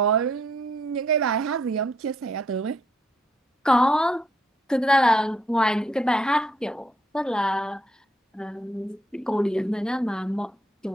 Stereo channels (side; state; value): both; normal; correlation 0.71